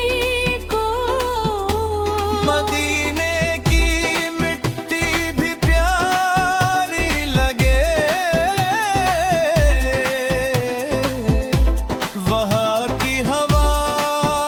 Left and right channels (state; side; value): identical; both; correlation 1.00